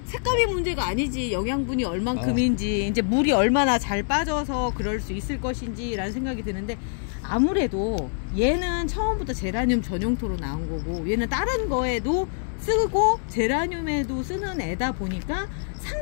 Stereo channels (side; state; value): right; silent; 60 dB below the other